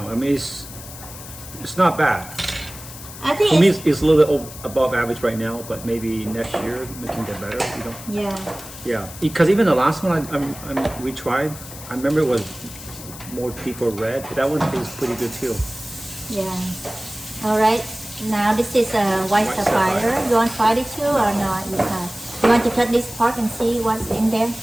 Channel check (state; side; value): noise; left; hiss, 14 dB below the sound